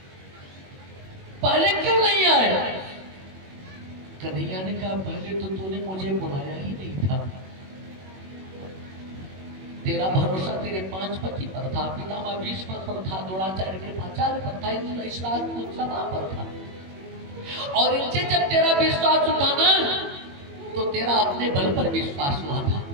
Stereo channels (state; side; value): late; left; 21 ms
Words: पहले क्यों नहीं आए? कन्हैया ने कहा, पहले तो तूने मुझे बुलाया ही नहीं था। तेरा भरोसा तेरे 5 पति पर था, पितामह भीष्म पर था, द्रोणाचार्य कृपाचार्य पर था, इस राजपूत सभा पर था। और इनसे जब तेरा विश्वास उठा ना, तो तेरा अपने बल पर विश्वास हुआ था।